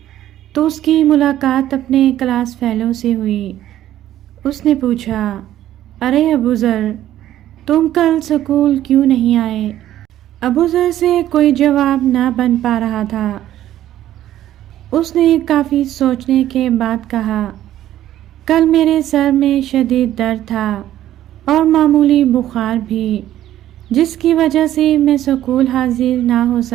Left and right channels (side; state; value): left; quieter; 12.7 dB